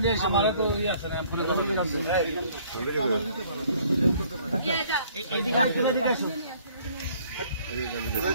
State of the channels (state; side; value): inverted; both; correlation -0.59